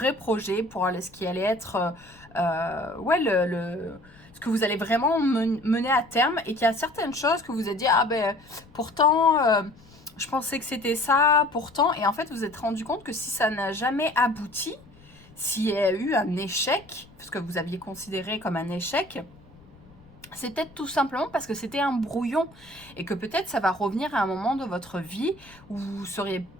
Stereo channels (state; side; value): noise; left; rumble, 25 dB below the sound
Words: projet, pour ce qui allait être, ce que vous allez vraiment mener à terme, et qu'il y a certaines choses que vous avez dit, pourtant, je pensais que c'était ça, pourtant, et en fait, vous vous êtes rendu compte que si ça n'a jamais abouti, s'il y a eu un échec, ce que vous aviez considéré comme un échec, c'est peut-être tout simplement parce que c'était un brouillon et que peut-être ça va revenir à un moment de votre vie où vous allez